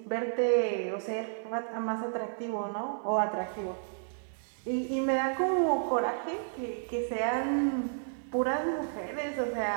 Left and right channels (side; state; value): left; silent; digital silence